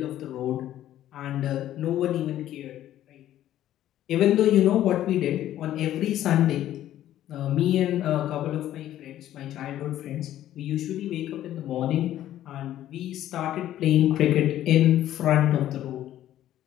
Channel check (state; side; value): quieter; right; 12.6 dB